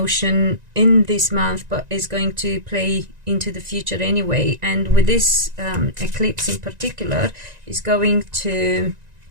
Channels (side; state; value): left; late; 1.9 ms